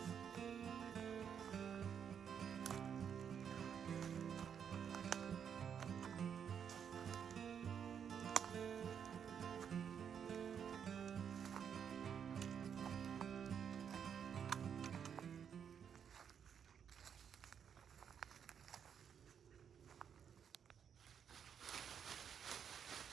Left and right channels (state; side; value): quieter; left; 7.8 dB